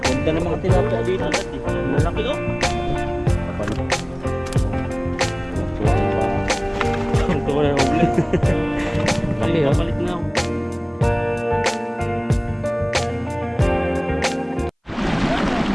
ganda ng mga tilapia dito. Malaki oh. Ito ko na uli. Laki oh. Papalit na ako.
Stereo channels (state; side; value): identical; both; correlation 1.00